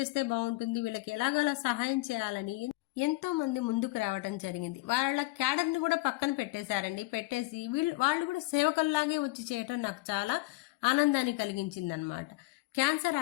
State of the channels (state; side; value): quieter; right; 21.7 dB